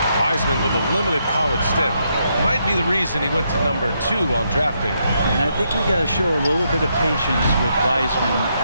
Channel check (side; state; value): both; inverted; correlation -0.78